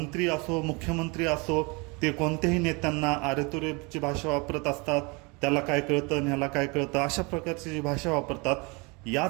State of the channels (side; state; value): left; quieter; 28.7 dB